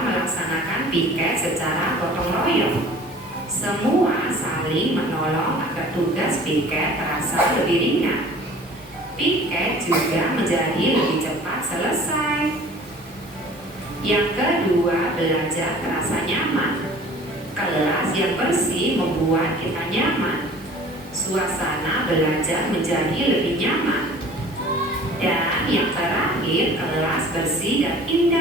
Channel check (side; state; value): both; normal; correlation 0.47